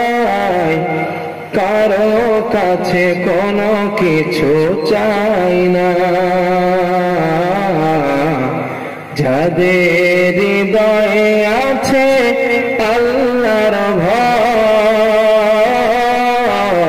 কারো কাছে কোনো কিছু চাই না। যাদের হৃদয়ে আছে আল্লাহর ভয়,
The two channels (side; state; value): both; identical; correlation 1.00